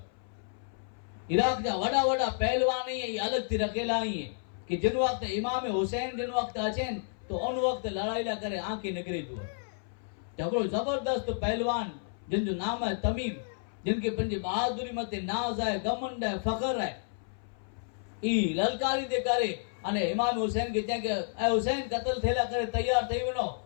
इराक जा वड़ा वड़ा पहलवान ही अलग थी रखेला ही है कि जिन वक्त इमाम हुसैन जिन वक्त अचेन तो उन वक्त लड़ाई ला करे आंखें निकरे जो झगड़ो जबरदस्त पहलवान जिन जो नाम है तमीम जिनके पंजे बहादुरी मते नाज है घमंड है फखर है ई ललकारी दे करे अने इमाम हुसैन के चए के ए हुसैन कत्ल थेला करे तैयार थई वनो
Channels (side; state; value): right; silent; 57 dB below the other